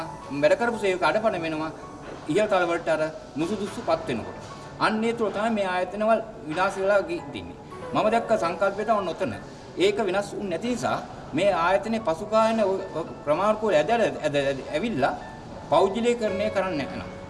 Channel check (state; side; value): identical; both; correlation 1.00